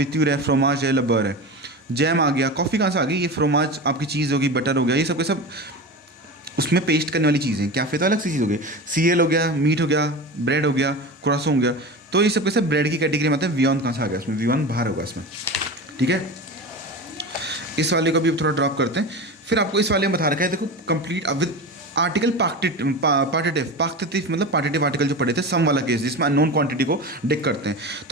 है, फ्रोमाज है, लबर है, जैम आ गया। कॉफ़ी कहाँ से आ गई, ये फ्रोमाज आपकी चीज़ होगी, बटर हो गया, ये सब के सब उसमें पेस्ट करने वाली चीज़ें। कैफ़े तो अलग सी चीज़ हो गई, सीरियल हो गया, मीट हो गया, ब्रेड हो गया, क्रोसो हो गया, तो ये सब के सब ब्रेड की कैटेगरी में आते हैं। वियॉन कहाँ से आ गया, इसमें वियॉन बाहर होगा इसमें, ठीक है। इस वाले को भी थोड़ा ड्रॉप करते हैं। फिर आपको इस वाले में बता रखा है, देखो कंप्लीट विद आर्टिकल पार्टिटिव मतलब पार्टिटिव आर्टिकल जो पढ़े थे, सम वाला केस जिसमें अननोन क्वांटिटी को डिक करते हैं।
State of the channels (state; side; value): normal; both; correlation 0.27